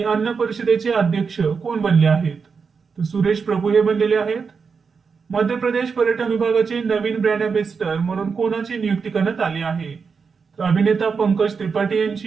अन्न परिषदेचे अध्यक्ष कोण बनले आहेत? तर सुरेश प्रभू हे बनलेले आहेत. मध्य प्रदेश पर्यटन विभागाचे नवीन ब्रँड अँबॅसेडर म्हणून कोणाची नियुक्ती करण्यात आली आहे? तर अभिनेता पंकज त्रिपाठी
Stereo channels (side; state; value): left; quieter; 5.5 dB